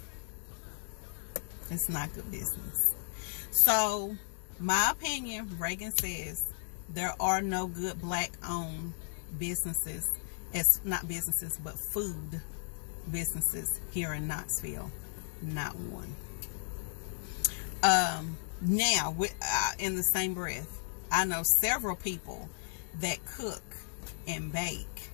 It's not good business. So my opinion, Regan says, there are no good black owned businesses, as not businesses but food businesses here in Knoxville. Not one. Now, in the same breath, I know several people that cook and bake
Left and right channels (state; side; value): silent; right; digital silence